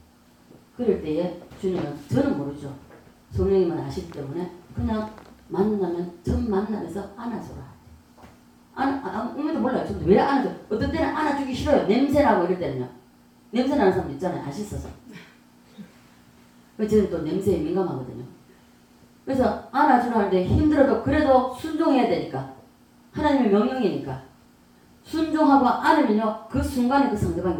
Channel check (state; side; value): identical; both; correlation 1.00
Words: 그럴 때에 주님은 저는 모르죠. 성령님은 아시기 때문에 그냥 만나면 전 만나면서 안아줘라. 아무도 몰라요. 저도 왜 안아줘? 어떤 때는 안아주기 싫어요. 냄새나고 이럴 때는요. 냄새나는 사람도 있잖아요. 안 씻어서. 저는 또 냄새에 민감하거든요. 그래서 안아주려 하는데 힘들어도 그래도 순종해야 되니까 하나님의 명령이니까 순종하고 안으면요 그 순간에 그 상대방의